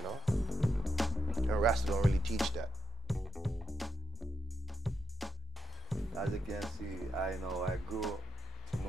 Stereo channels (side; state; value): both; normal; correlation 0.83